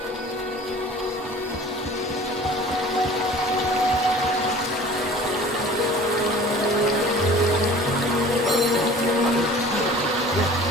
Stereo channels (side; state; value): both; normal; correlation 0.45